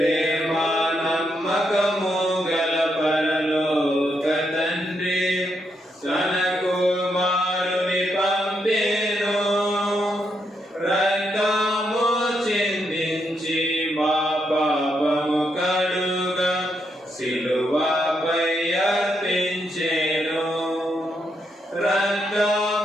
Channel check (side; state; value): both; normal; correlation 0.80